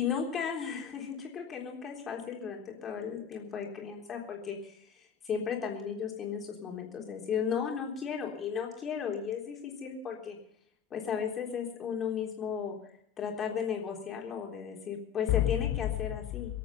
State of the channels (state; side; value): quieter; right; 7.7 dB